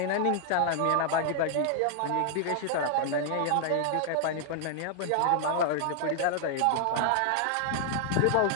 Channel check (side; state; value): both; different; correlation 0.00